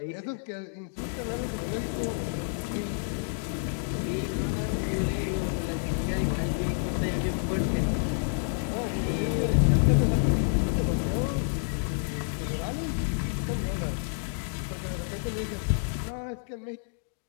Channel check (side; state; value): right; silent; digital silence